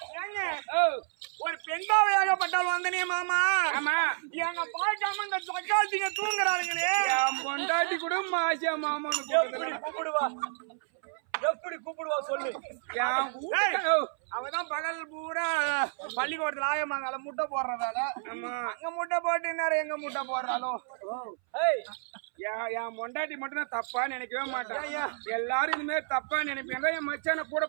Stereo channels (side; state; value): left; silent; 58 dB below the other